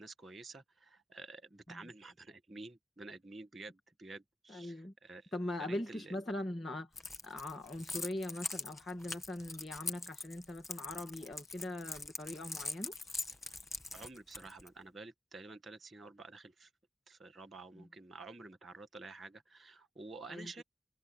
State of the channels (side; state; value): both; normal; correlation 0.83